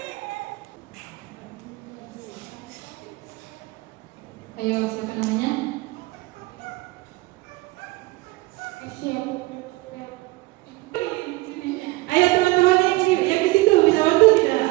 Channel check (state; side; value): quieter; left; 21.4 dB